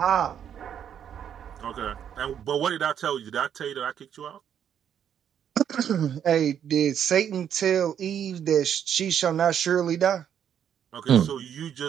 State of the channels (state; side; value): quieter; left; 9.0 dB